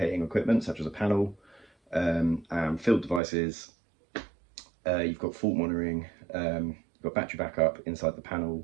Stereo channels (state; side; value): drops out; left; at 3.2 s